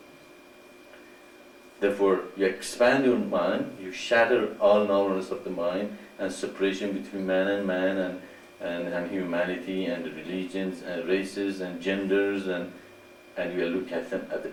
Therefore, you expand your mind, you shatter all narrowness of the mind and separation between man and humanity and religions and races and genders, and you look at them as a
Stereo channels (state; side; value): identical; both; correlation 1.00